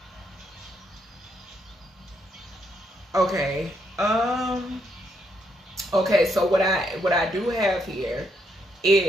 Okay. Okay, so what I do have here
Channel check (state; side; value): normal; both; correlation 0.76